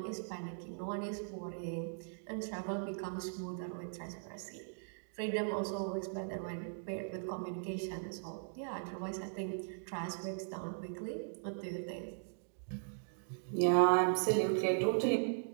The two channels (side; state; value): left; silent; digital silence